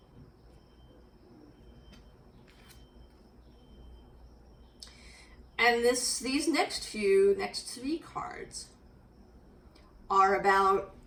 And these next three cards are about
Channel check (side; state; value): both; identical; correlation 1.00